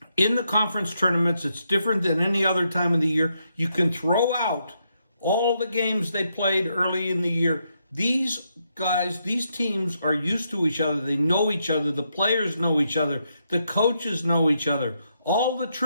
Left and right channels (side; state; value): both; inverted; correlation -0.80